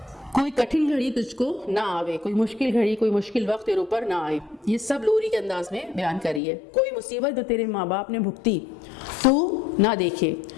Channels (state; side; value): drops out; right; at 6.4 s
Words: کوئی کٹھن گھڑی تجھ کو نہ آوے، کوئی مشکل گھڑی، کوئی مشکل وقت تیرے اوپر نہ آئے. یہ سب لوری کے انداز میں بیان کری ہے. کوئی مصیبت جو تیرے ماں باپ نے بھگتی تو نہ دیکھے.